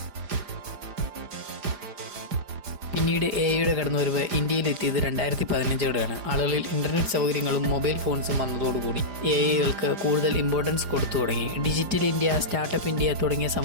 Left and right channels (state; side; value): late; left; 4.9 ms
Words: പിന്നീട് എഐയുടെ കടന്നുവരവ് ഇന്ത്യയിലെത്തിയത് 2015-ഓടെയാണ്. ആളുകളിൽ ഇൻ്റർനെറ്റ് സൗകര്യങ്ങളും മൊബൈൽ ഫോൺസും വന്നതോടുകൂടി എഐകൾക്ക് കൂടുതൽ ഇമ്പോർട്ടൻസ് കൊടുത്തു തുടങ്ങി. ഡിജിറ്റൽ ഇന്ത്യ, സ്റ്റാർട്ടപ്പ് ഇന്ത്യ തുടങ്ങിയ